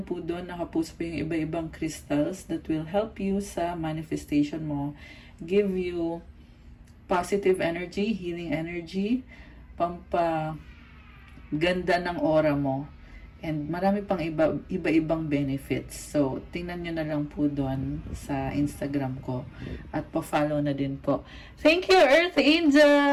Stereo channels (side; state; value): both; identical; correlation 1.00